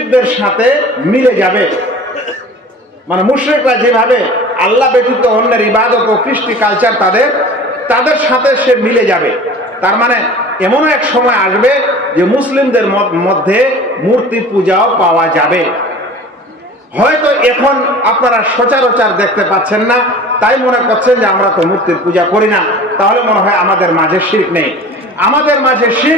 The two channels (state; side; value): normal; both; correlation 0.41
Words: সাথে মিলে যাবে। মানে মুশরিকরা যেভাবে আল্লাহ ব্যতীত অন্যের ইবাদত ও কৃষ্টি কালচার তাদের সাথে সে মিলে যাবে। তার মানে এমন এক সময় আসবে যে মুসলিমদের মধ্যে মূর্তি পূজাও পাওয়া যাবে। হয়তো এখন আপনারা সচরাচর দেখতে পাচ্ছেন না, তাই মনে করছেন যে আমরা তো মূর্তির পূজা করি না, তাহলে মনে হয় আমাদের মাঝে শিরক নেই। আমাদের মাঝে